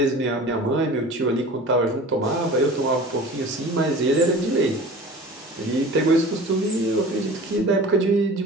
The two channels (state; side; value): normal; both; correlation 0.40